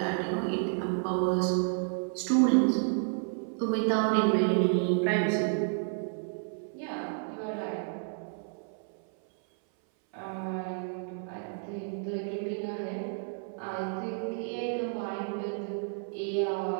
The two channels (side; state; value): left; silent; 57 dB below the other